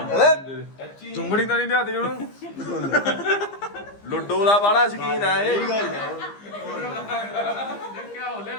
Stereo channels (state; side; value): late; right; 15 ms